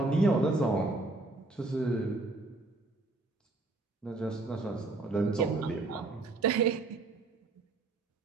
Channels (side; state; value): left; quieter; 3.2 dB